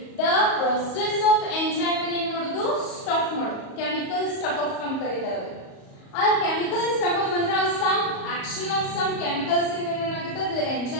ದ ಪ್ರೊಸೆಸ್ ಆಫ್ ಎಂಜೈಮ್ ಅನ್ನು ಏನ್ ಮಾಡೋದು ಸ್ಟಾಪ್ ಮಾಡೋದು. ಕೆಮಿಕಲ್ ಸ್ಟಾಪ್ ಆಫ್ ಅಂತ ಕರೀತಾರೆ. ಆ ಕೆಮಿಕಲ್ ಸ್ಟಾಪ್ ಆಫ್ ಅಂದ್ರೆ some action of some chemicals ಏನಾಗುತ್ತೆ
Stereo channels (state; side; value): late; right; 37 ms